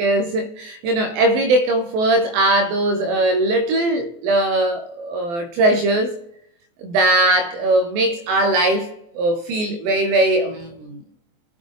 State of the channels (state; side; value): late; left; 23 ms